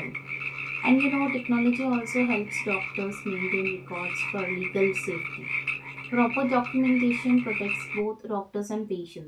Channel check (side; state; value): both; identical; correlation 1.00